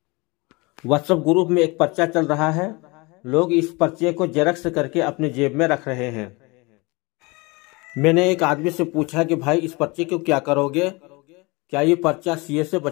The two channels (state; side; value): quieter; right; 26.0 dB